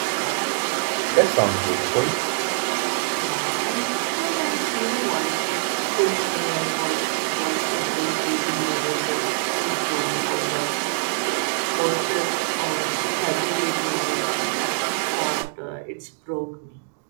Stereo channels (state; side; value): silent; left; 63 dB below the other